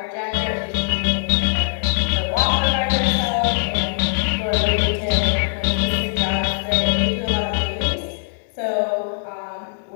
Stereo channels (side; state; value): right; silent; digital silence